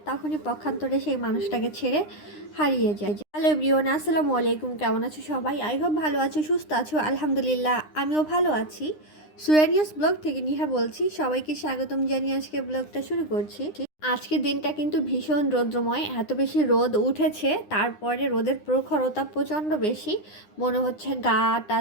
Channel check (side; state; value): right; late; 9.8 ms